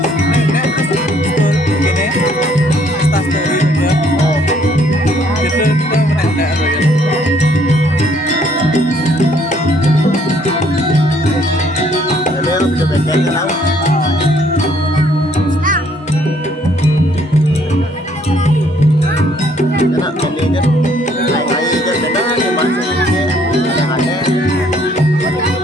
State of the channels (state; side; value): normal; both; correlation 0.64